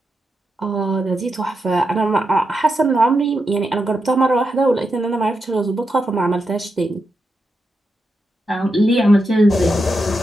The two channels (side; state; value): both; normal; correlation 0.86